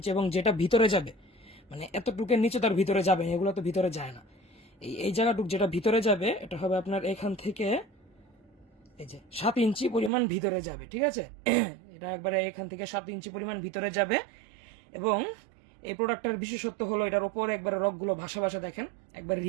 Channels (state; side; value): drops out; left; at 10.1 s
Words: এবং যেটা ভিতরে যাবে মানে এতটুকের নিচে তার ভিতরে যাবে, এগুলো তো ভিতরে যায় না। এই জায়গাটুক যেটা ভিতরে যাবে এটা হবে আপনার এখান থেকে এই যে 7 ইঞ্চি পরিমাণ ভিতরে যাবে। ঠিক আছে, এটা একবারে এখান থেকে 7 ইঞ্চি পরিমাণ ভিতরে যাবে এবং এই প্রোডাক্টের বিশেষত্ব হলো এটার উপরে একবারে রকগুলো ভাসা ভাসা, দেখেন একবার